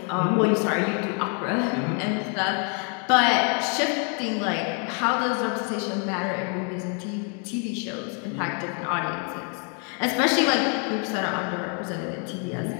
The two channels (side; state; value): right; quieter; 39.6 dB